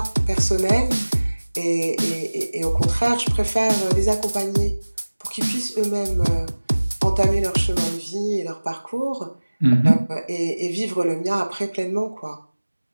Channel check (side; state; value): both; inverted; correlation -1.00